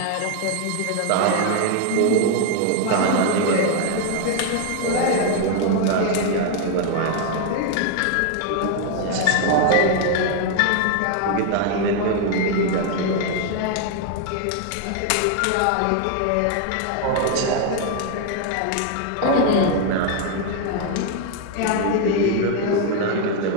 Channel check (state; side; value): different; both; correlation 0.00